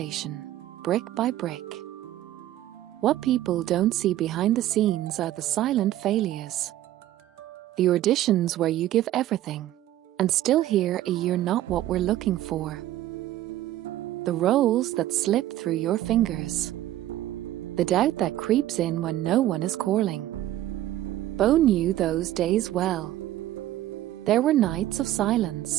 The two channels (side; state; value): left; quieter; 13.8 dB